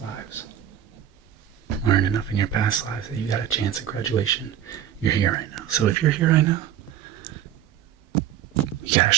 lives, learned enough in your past lives that you got a chance at graduation. You're here right now. So if you're here right now, you got a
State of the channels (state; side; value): quieter; left; 10.6 dB